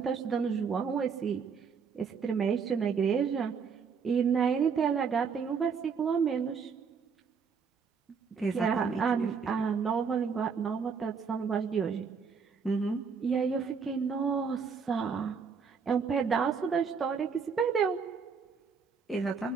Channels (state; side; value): quieter; left; 5.9 dB